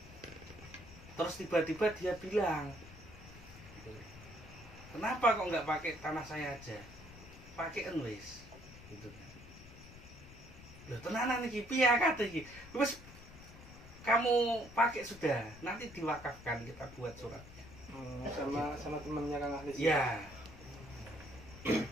Terus tiba-tiba dia bilang, kenapa kok nggak pakai tanah saya aja? Pakai wes. Gitu kan. Loh tenanan iki piye kate iki? Wes kamu pakai sudah, nanti diwakafkan, kita buat suratnya. Sama temennya Kang Ahli. Ya.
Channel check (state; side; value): noise; left; rumble, 17 dB below the sound